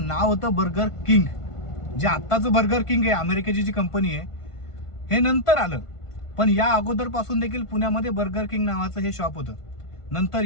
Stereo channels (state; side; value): late; right; 1.5 ms